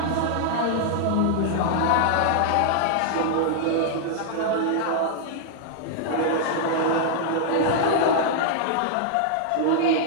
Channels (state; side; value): different; both; correlation -0.01